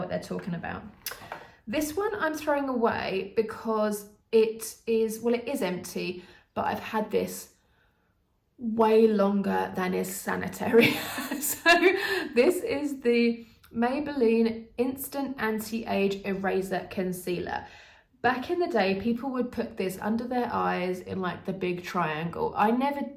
they're talking about. This one I'm throwing away because it is empty, but I've had this way longer than is sanitary. So this is the Maybelline Instant Anti-Age Eraser Concealer. Back in the day, people would put this under their eyes in like the big triangle. I never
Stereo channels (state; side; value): identical; both; correlation 1.00